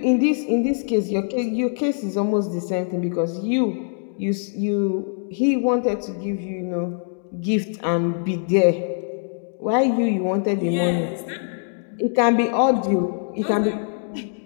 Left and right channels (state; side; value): silent; right; 64 dB below the other